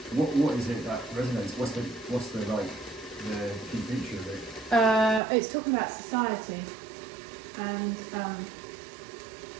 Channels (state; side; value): drops out; left; at 5.2 s